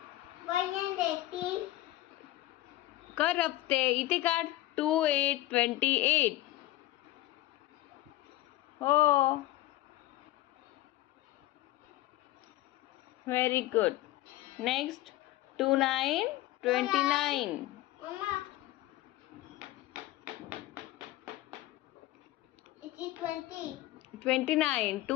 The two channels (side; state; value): right; quieter; 16.2 dB